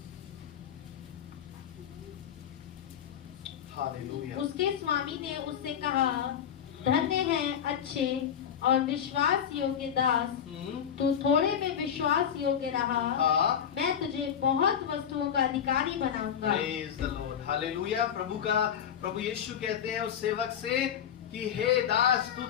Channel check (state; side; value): quieter; right; 8.6 dB